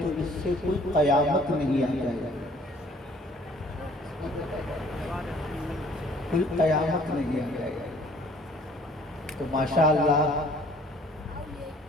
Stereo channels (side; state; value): both; normal; correlation 0.56